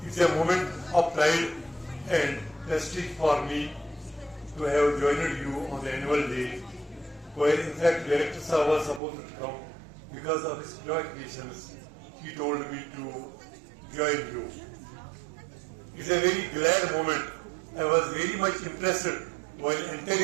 It's a moment of pride and prestige for me to have joined you on the annual day, where in fact Director Sir was supposed to come. Because of his preoccupations, he told me to join you. It's a very glad moment. I was very much impressed while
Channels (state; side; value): drops out; left; at 9.0 s